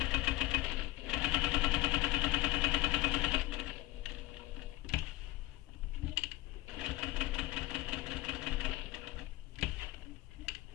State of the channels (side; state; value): right; quieter; 18.0 dB